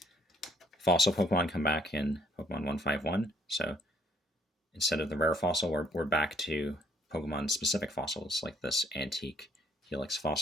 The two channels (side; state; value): both; normal; correlation 0.65